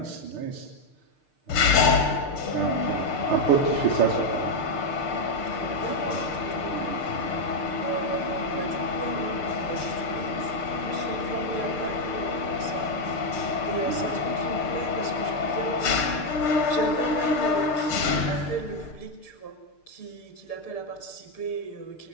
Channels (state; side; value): late; right; 6.6 ms